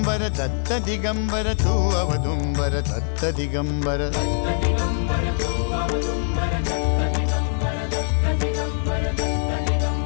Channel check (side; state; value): right; silent; digital silence